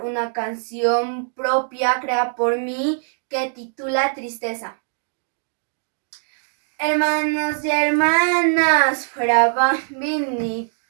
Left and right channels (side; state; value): left; silent; digital silence